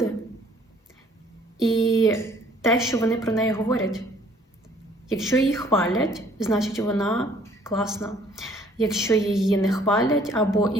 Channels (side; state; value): both; normal; correlation 0.59